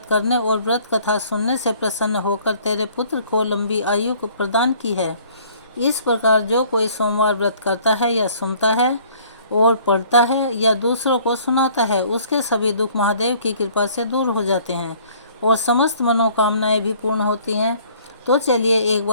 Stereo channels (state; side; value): inverted; both; correlation -0.56